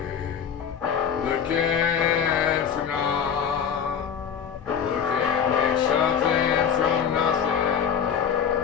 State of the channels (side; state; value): right; quieter; 7.7 dB